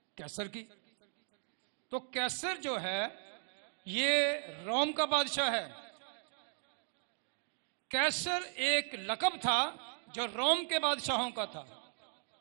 कैसर की। तो कैसर जो है ये रोम का बादशाह है। कैसर एक लक़ब था जो रोम के बादशाहों का था,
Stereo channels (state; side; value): silent; left; 53 dB below the other